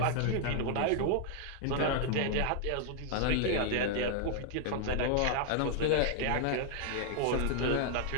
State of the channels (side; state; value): both; different; correlation 0.00